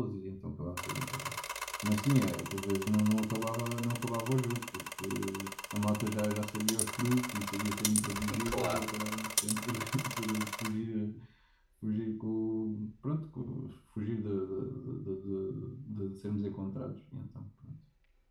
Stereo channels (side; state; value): both; identical; correlation 1.00